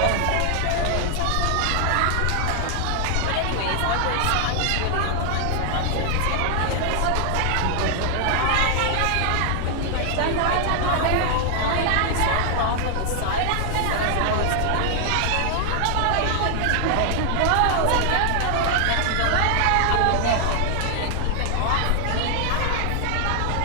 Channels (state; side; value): different; both; correlation 0.00